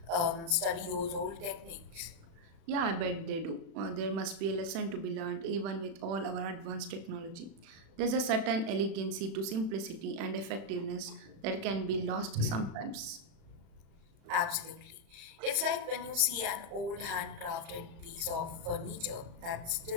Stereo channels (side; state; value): left; late; 35 ms